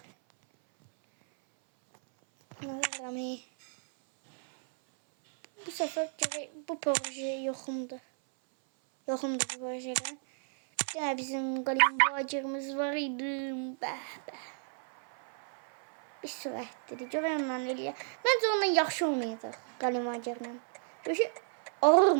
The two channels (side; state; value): left; silent; 56 dB below the other